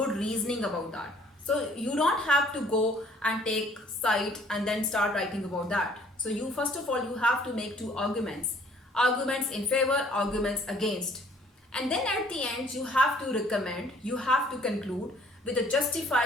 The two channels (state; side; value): normal; both; correlation 0.59